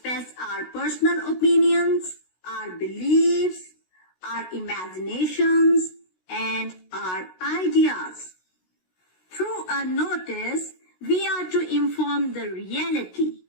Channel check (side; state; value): right; late; 16 ms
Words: our personal opinions, our beliefs, our imaginations, and our ideas. Through a notice, we are to inform the reality,